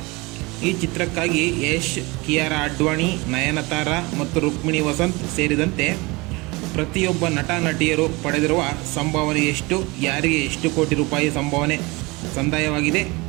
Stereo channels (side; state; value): left; quieter; 24.6 dB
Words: ಈ ಚಿತ್ರಕ್ಕಾಗಿ ಯಶ್, ಕಿಯಾರಾ ಅಡ್ವಾಣಿ, ನಯನತಾರಾ ಮತ್ತು ರುಕ್ಮಿಣಿ ವಸಂತ್ ಸೇರಿದಂತೆ ಪ್ರತಿಯೊಬ್ಬ ನಟ ನಟಿಯರು ಪಡೆದಿರುವ ಸಂಭಾವನೆ ಎಷ್ಟು, ಯಾರಿಗೆ ಎಷ್ಟು ಕೋಟಿ ರೂಪಾಯಿ ಸಂಭಾವನೆ ಸಂದಾಯವಾಗಿದೆ,